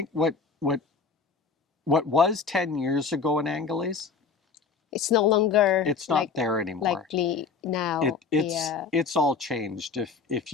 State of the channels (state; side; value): quieter; right; 5.0 dB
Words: what was 10 years ago in Angeles, It's no longer it's not there anymore. likely now. Yeah. It's all changed. If